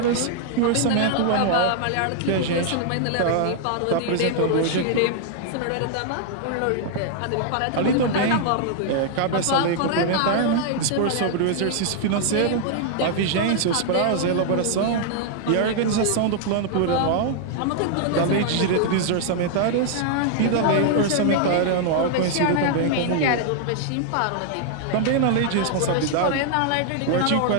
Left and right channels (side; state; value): both; different; correlation -0.01